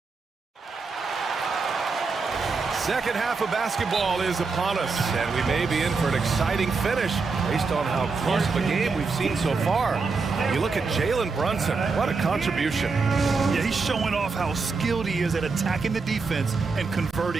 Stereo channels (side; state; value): left; quieter; 4.4 dB